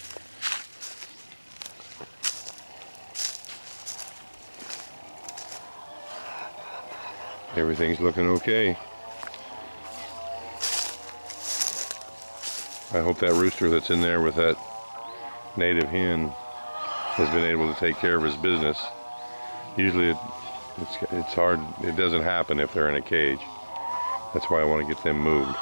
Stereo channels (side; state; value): both; inverted; correlation -1.00